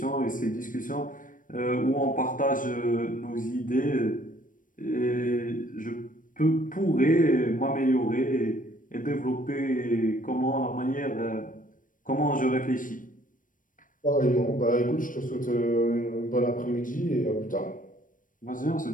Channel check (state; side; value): late; right; 0.38 ms